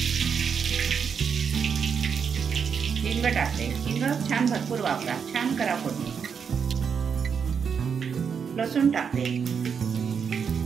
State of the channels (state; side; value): quieter; left; 6.7 dB